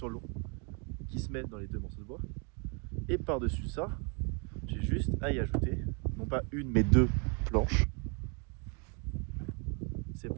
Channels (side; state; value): left; quieter; 34.8 dB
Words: l'eau qui se met dans les deux morceaux de bois. Et par dessus ça, j'ai juste à y ajouter non pas une mais deux planches. Ces